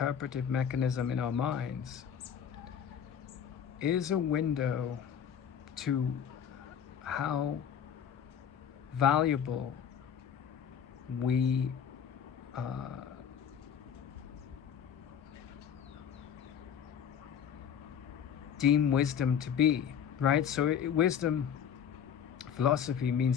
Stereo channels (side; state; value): right; quieter; 8.3 dB